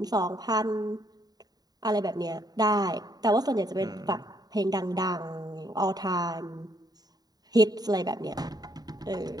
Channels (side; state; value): left; late; 0.19 ms